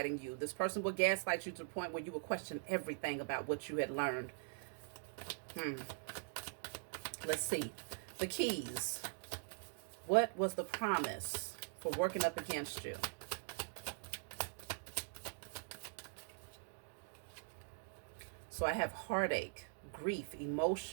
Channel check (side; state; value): left; silent; digital silence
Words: you. This person would gaslight you to the point where you would question everything about what you had learned. Let's see. The keys. What was the promise for working up against you? So I have heartache, grief,